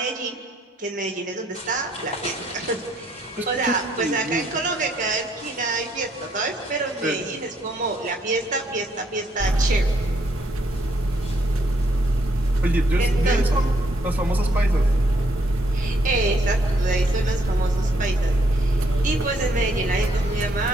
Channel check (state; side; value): normal; both; correlation 0.70